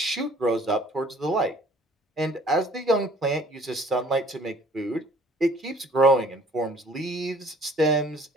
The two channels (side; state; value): both; normal; correlation 0.53